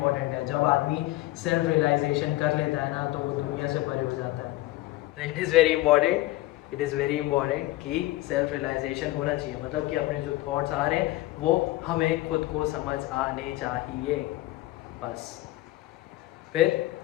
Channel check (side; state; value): right; quieter; 17.5 dB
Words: है, जब आदमी सेल्फ रियलाइजेशन कर लेता है ना तो वो दुनिया से परे हो जाता है। It is very important, it is very important कि सेल्फ रियलाइजेशन होना चाहिए, मतलब कि अपने जो थॉट्स आ रहे हैं वो हमें खुद को समझ आने चाहिए बस। फिर